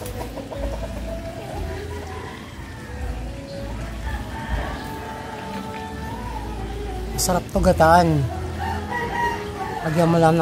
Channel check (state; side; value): identical; both; correlation 1.00